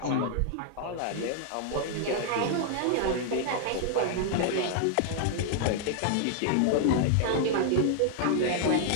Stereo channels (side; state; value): both; different; correlation 0.00